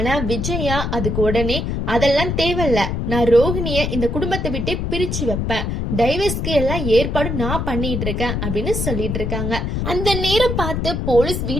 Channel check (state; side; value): noise; left; rumble, 1 dB below the sound